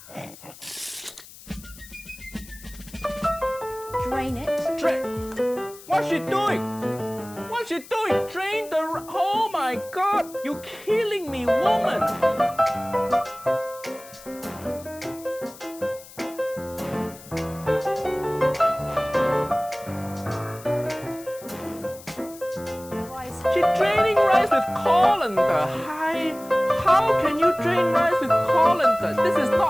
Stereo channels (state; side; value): noise; left; hiss, 19 dB below the sound